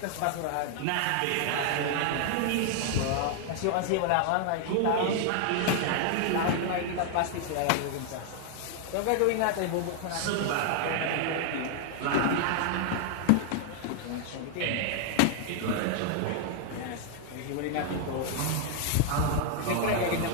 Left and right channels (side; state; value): both; different; correlation 0.00